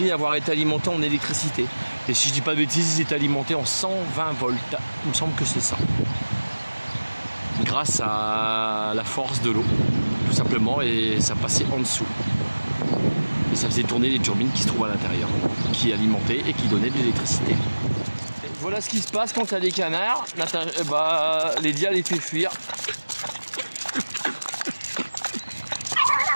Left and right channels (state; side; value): inverted; both; correlation -1.00